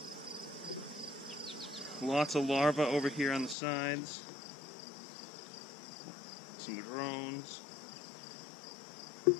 it. Lots of larvae over here on the sides. Some drones.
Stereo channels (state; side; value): drops out; right; at 3.6 s